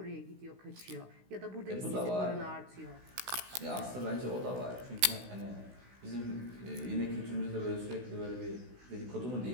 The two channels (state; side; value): late; left; 16 ms